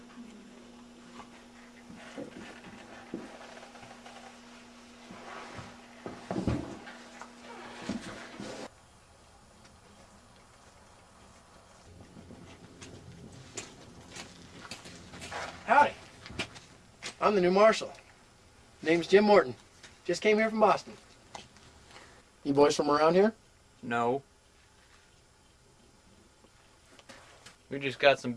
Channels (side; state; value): both; identical; correlation 1.00